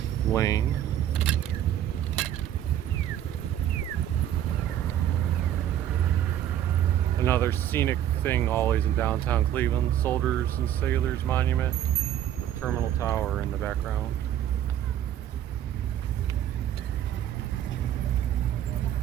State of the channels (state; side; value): quieter; left; 11.1 dB